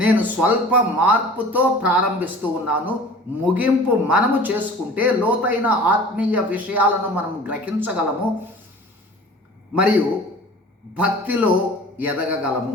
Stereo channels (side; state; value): both; normal; correlation 0.43